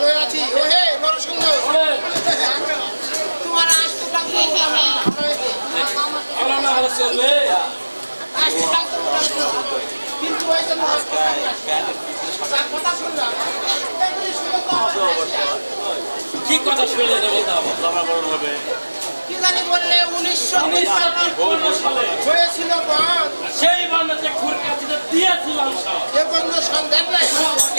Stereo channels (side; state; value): both; inverted; correlation -1.00